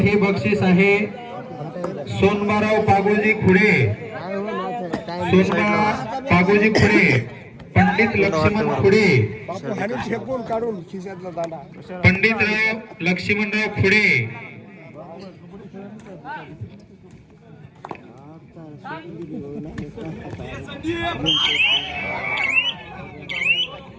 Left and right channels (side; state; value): both; identical; correlation 1.00